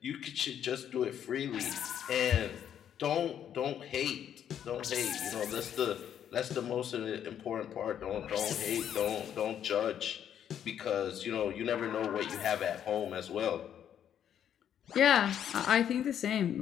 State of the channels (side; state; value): right; quieter; 9.5 dB